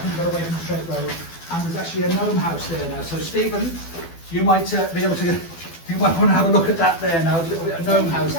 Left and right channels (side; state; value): right; late; 12 ms